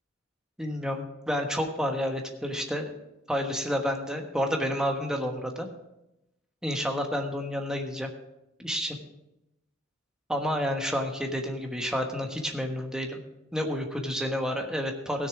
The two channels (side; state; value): both; normal; correlation 0.67